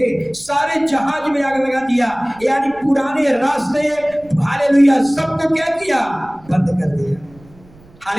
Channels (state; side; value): noise; right; rumble, 25 dB below the sound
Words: सारे जहाज में आग लगा दिया, यानी पुराने रास्ते, हालेलुया, सबको क्या किया? बंद कर दिया।